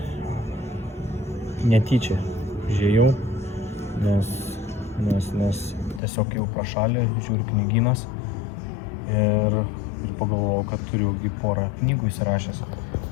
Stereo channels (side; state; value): right; drops out; at 6.0 s